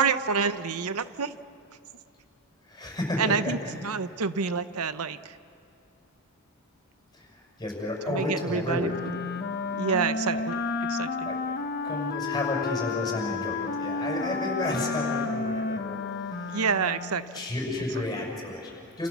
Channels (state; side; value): normal; both; correlation 0.13